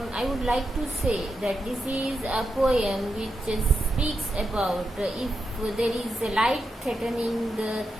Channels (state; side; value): normal; both; correlation 0.86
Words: I would like to say that this is a poem which speaks about if there is a life threatening